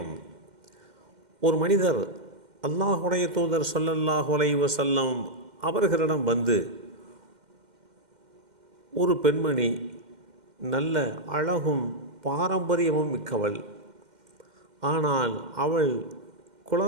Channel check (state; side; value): late; left; 2.1 ms